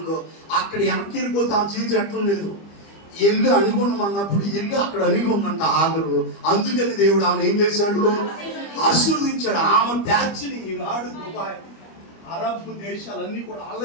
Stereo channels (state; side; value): late; right; 25 ms